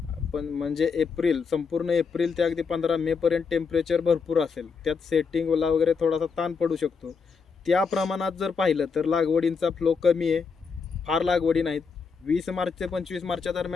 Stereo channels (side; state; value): right; quieter; 5.3 dB